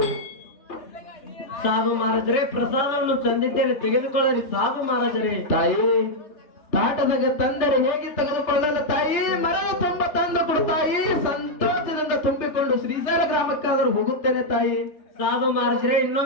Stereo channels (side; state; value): right; late; 3.3 ms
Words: ಸಾಧು ಮಹಾರಾಜರೇ ಪ್ರಸಾದವನ್ನು ತಂದಿದ್ದೇನೆ ತೆಗೆದುಕೊಳ್ಳರಿ ಸಾಧು ಮಹಾರಾಜರೇ ತಾಯಿ ತಾಟದಾಗ ತಂದರೆ ಹೇಗೆ ತೆಗೆದುಕೊಳ್ಳಲು ತಾಯಿ ಮರದ ತುಂಬ ತಂದು ಕೊಡು ತಾಯಿ ಸಂತೋಷದಿಂದ ತುಂಬಿಕೊಂಡು ಶ್ರೀಶೈಲ ಗ್ರಾಮಕ್ಕಾದರೂ ಹೋಗುತ್ತೇನೆ ತಾಯಿ ಸಾಧು ಮಹಾರಾಜರೇ